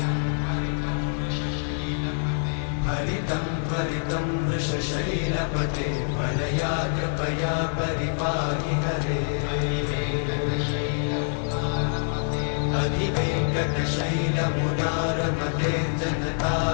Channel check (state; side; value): silent; right; digital silence